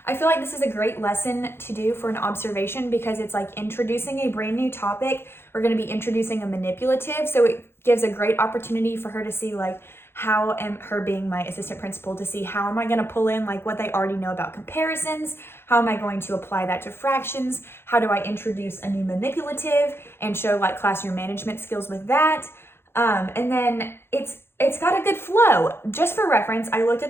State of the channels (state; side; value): late; right; 0.11 ms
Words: I feel like this is a great lesson to do for an observation because it's like introducing a brand new topic. We're going to be introducing a manipulative, so it gives a great opportunity for her to see like how am her being my assistant principal to see how am I going to pull in like what they already know about comparisons, how am I going to apply that to fractions, how do I introduce a new manipulative and show like classroom management skills with that. And then it's got a good flow. Just for reference, I looked